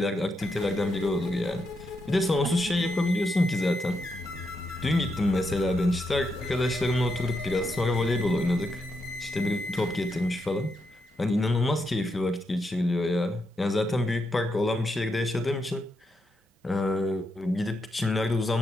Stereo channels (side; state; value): both; normal; correlation 0.82